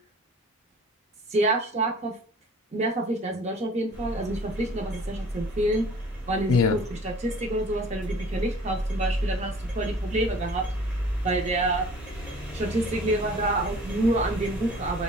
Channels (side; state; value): both; normal; correlation 0.48